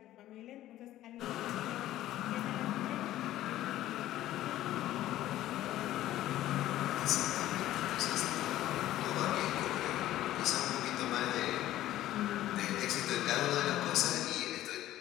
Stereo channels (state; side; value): quieter; right; 14.1 dB